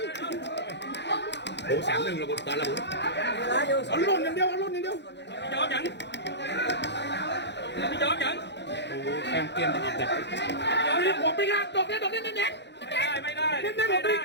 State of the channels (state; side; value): late; right; 0.50 ms